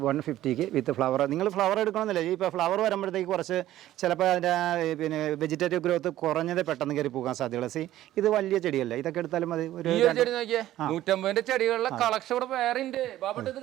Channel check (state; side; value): quieter; left; 13.9 dB